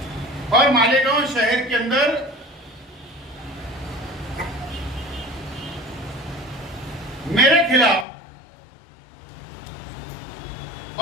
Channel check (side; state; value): right; drops out; at 8.1 s